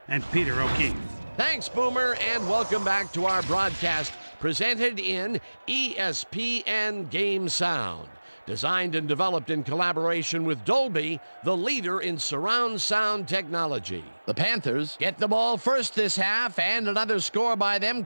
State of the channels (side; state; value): both; inverted; correlation -1.00